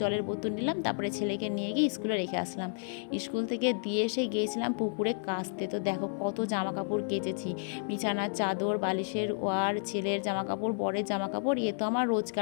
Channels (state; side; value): silent; right; digital silence